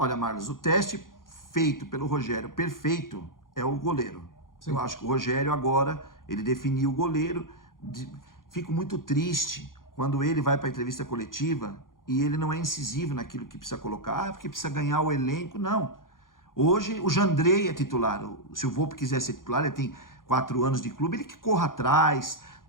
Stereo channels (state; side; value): late; right; 0.90 ms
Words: Marlos, o teste feito pelo Rogério perfeito é o goleiro. Sim. Eu acho que o Rogério agora, ele definiu o goleiro. Fico muito triste quando ele vai para a entrevista coletiva e ele não é incisivo naquilo que precisa colocar, porque precisa ganhar o elenco. Não. Hoje o Jandrei é titular. Se o Volpe quiser ser titular, ele tem 4 anos de clube, ele que corra atrás,